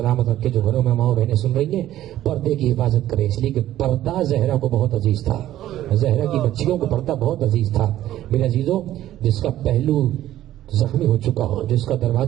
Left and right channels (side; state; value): left; quieter; 13.3 dB